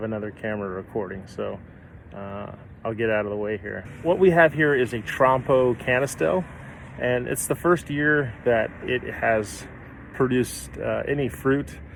another camera recording. So I'll get out of the way here. What we have here is a Trompo canistel, and it's the first year that it has produced any fruit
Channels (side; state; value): both; identical; correlation 1.00